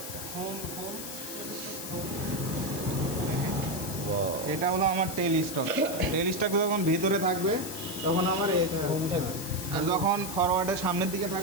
এটা হলো আমার টেল স্টক। টেল স্টক যখন ভিতরে থাকবে তখন আমার এই আর যখন ফরওয়ার্ডের সামনের দিকে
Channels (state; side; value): noise; left; hiss, 8 dB below the sound